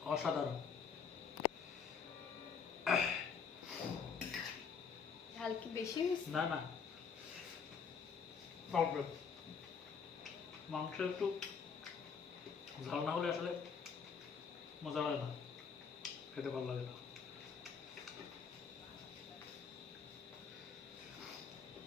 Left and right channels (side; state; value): right; quieter; 6.2 dB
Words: অসাধারণ। ঝাল কি বেশি হয়েছে? না না, মাংস একটু ঝাল না হলে আসলে মজা লাগে না, খেতে ভালো লাগে না।